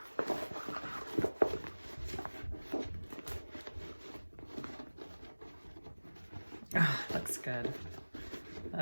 Oh, looks good.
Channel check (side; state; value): both; inverted; correlation -1.00